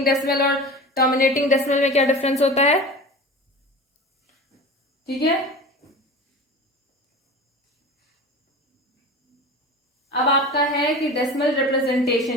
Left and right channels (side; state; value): both; normal; correlation 0.34